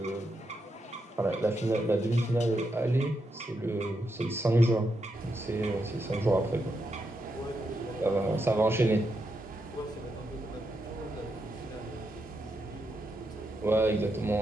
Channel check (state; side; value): normal; both; correlation 0.83